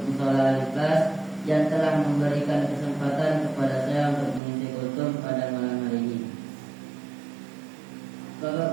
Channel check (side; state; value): left; drops out; at 4.4 s